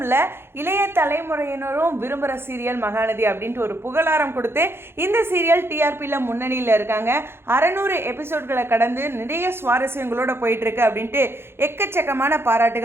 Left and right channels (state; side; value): late; left; 0.11 ms